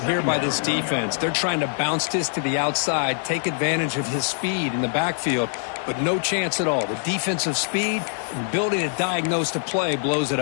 here by this defense. They're trying to bounce this to the outside, take advantage of his speed in the backfield, but no chance at all. The defensive speed and ability to diagnose the play blows it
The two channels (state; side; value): silent; right; 63 dB below the other